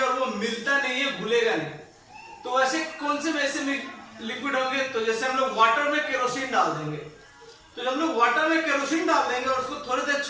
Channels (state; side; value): identical; both; correlation 1.00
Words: और वो मिलता नहीं है, घुलेगा नहीं। तो वैसे कौन से वैसे लिक्विड होंगे, तो जैसे हम लोग वाटर में केरोसिन डाल देंगे, तो जब हम लोग वाटर में केरोसिन डाल देंगे और उसको थोड़ी देर